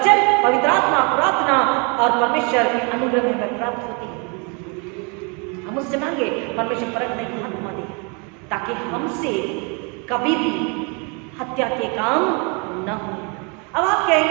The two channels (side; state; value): left; quieter; 33.6 dB